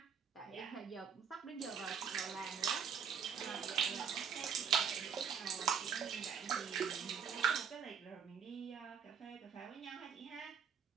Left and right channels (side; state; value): left; quieter; 7.1 dB